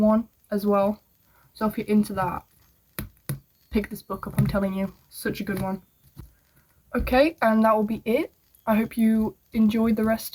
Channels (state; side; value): identical; both; correlation 1.00